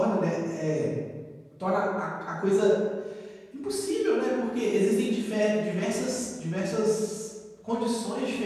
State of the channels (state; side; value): identical; both; correlation 1.00